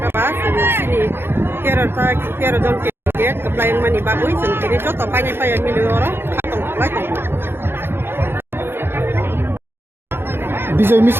जोंथिनि 13 जन के कप्लाइं मानि बागै जोंथिनि जत पाइनाय पाया मिलियर तंथलाय विजय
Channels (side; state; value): left; late; 0.11 ms